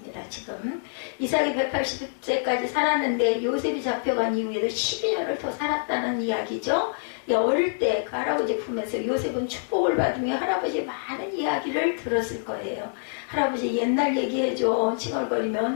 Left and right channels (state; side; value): silent; right; digital silence